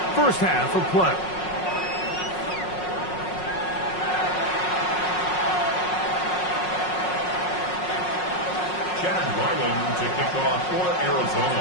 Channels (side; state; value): right; late; 5.5 ms